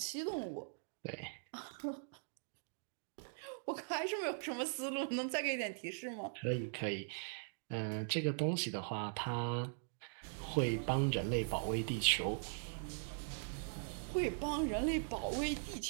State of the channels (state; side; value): silent; left; digital silence